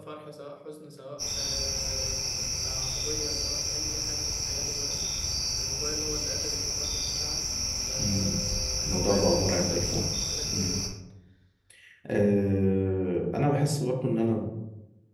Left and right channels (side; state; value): both; identical; correlation 1.00